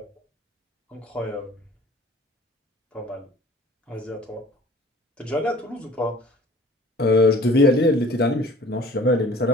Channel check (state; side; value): normal; both; correlation 0.49